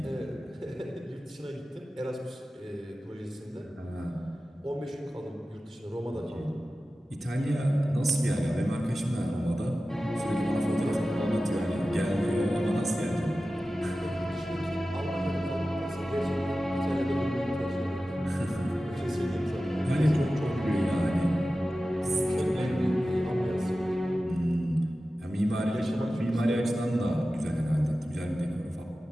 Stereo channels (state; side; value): normal; both; correlation 0.95